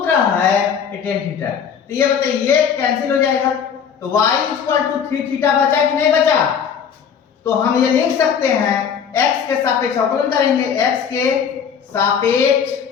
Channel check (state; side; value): quieter; right; 7.4 dB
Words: है ये टेन थीटा। तो ये बताइए ये कैंसिल हो जाएगा तो y equal to three theta बचा कि नहीं बचा? तो हम ये लिख सकते हैं x के सापेक्ष अवकलन करेंगे। x के सापेक्ष